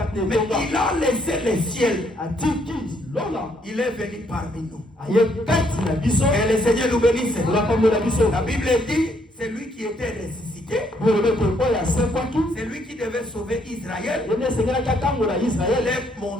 na Mais etonga il a laissé le ciel. atiki lola Il est venu parmi nous. aye kati na biso Que le Seigneur nous bénisse. olapambola biso La Bible dit, c'est lui qui était ressuscité. bolobi ete oyo asekwaki C'est lui qui devait sauver Israël. ye nde esengelaki akangola Il israele est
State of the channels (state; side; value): normal; both; correlation 0.70